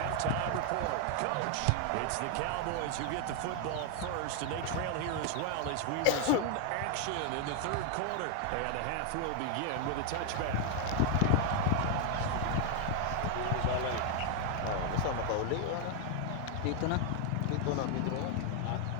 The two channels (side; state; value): both; different; correlation 0.00